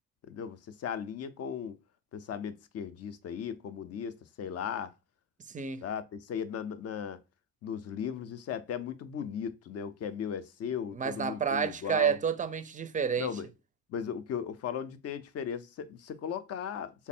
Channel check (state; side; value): normal; both; correlation 0.05